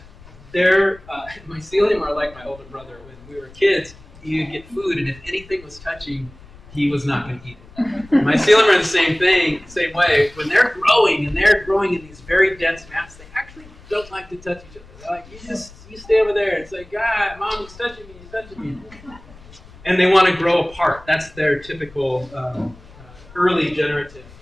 mycelium are like my older brother. When we were kids, you'd get food, and if anything was touching, he was not going to eat it. Mycelium are the same way. When they're growing, and they're growing in these very dense mats, they actually don't like to touch each other. They're like, you stay over there. It's like, God, Mom, he's touching me. And they want to grow apart. That's their typical early generative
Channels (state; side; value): noise; left; rumble, 22 dB below the sound